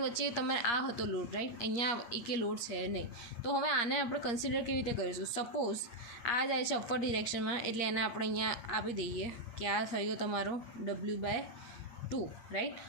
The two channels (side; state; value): right; late; 8.5 ms